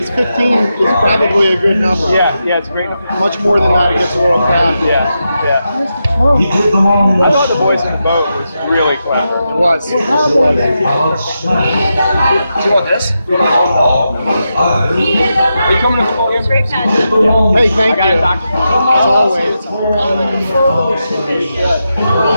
15 is probably a good number. Yeah, it's great. Much more than that, it gets a little crowded. Yeah. I thought the boys in the boat was really clever. It was. Do you want this? Are you coming to the ball game? Great pageant. Hey, thank you. As always.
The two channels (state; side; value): inverted; both; correlation -0.87